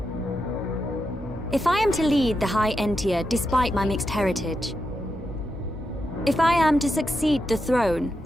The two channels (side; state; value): both; normal; correlation 0.86